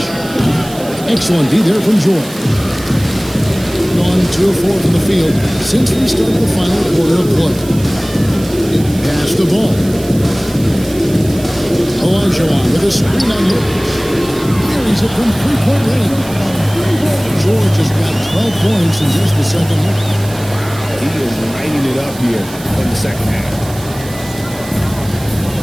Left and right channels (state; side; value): noise; right; hiss, 16 dB below the sound